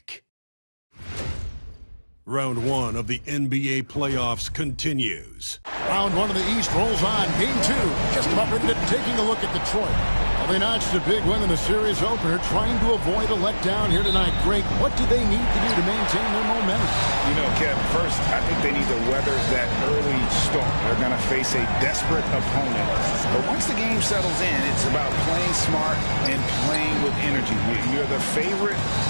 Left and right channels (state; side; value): inverted; both; correlation -1.00